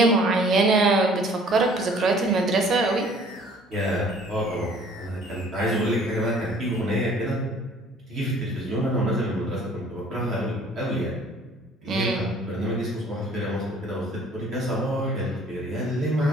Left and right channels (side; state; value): both; normal; correlation 0.54